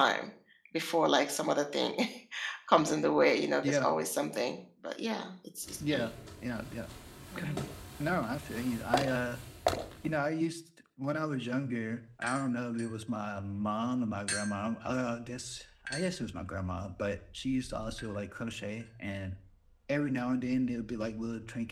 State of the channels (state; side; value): identical; both; correlation 1.00